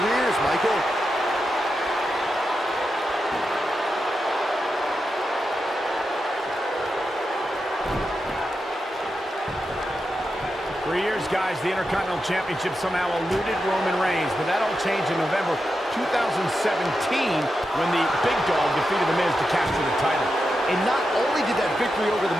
Michael. For years, guys, the Intercontinental Championship somehow eluded Roman Reigns, but that all changed in November 2017 when the Big Dog defeated The Miz to capture the title. And not only did that victory over The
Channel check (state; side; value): normal; both; correlation 0.88